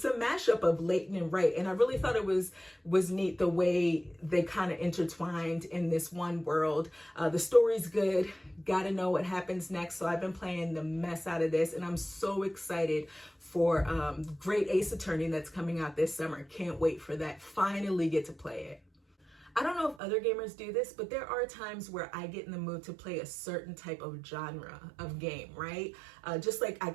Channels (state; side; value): drops out; left; at 20.0 s